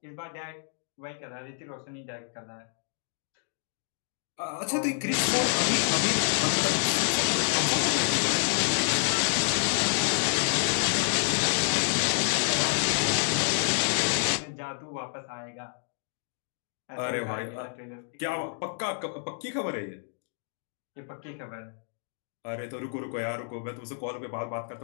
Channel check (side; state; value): right; silent; digital silence